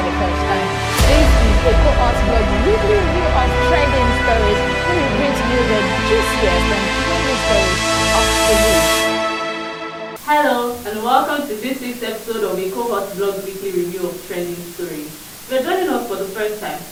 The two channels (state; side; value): identical; both; correlation 1.00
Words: the first time, this is Ekohotblog weekly review of trending stories, where we bring to you the juiciest and trending stories of the week. Hello and welcome to this week's episode of Ekohotblog weekly review of trending stories. If you're joining us for the first time,